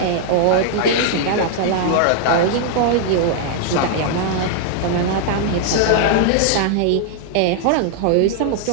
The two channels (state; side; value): different; both; correlation -0.01